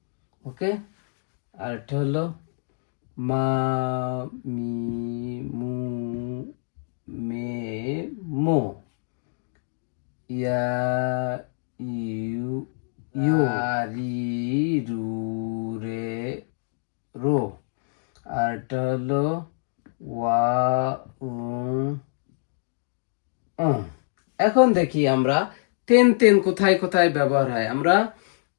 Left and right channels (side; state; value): right; silent; digital silence